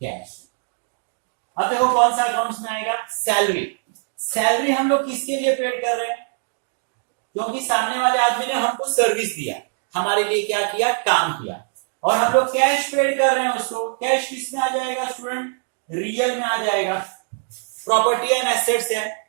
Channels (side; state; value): left; silent; digital silence